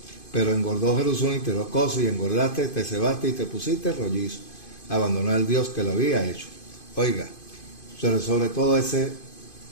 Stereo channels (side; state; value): right; late; 2.5 ms